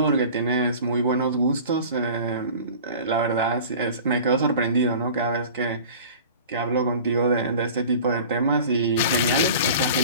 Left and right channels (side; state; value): both; inverted; correlation -0.40